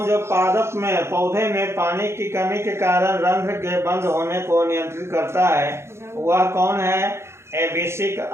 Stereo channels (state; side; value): late; left; 0.13 ms